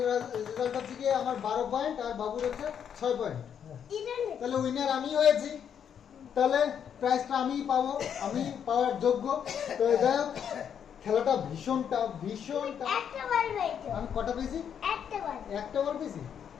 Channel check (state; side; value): quieter; right; 8.3 dB